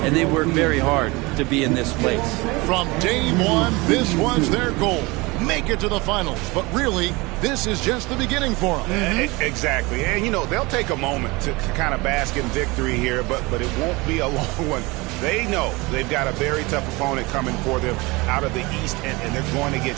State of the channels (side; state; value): left; quieter; 24.0 dB